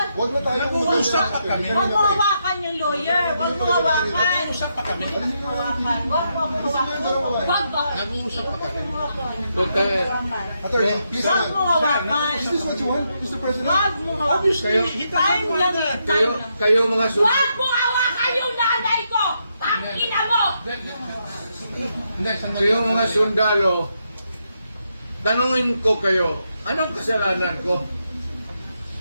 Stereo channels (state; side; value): inverted; both; correlation -0.81